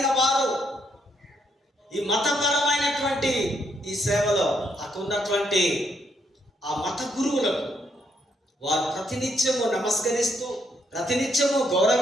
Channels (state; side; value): normal; both; correlation 0.74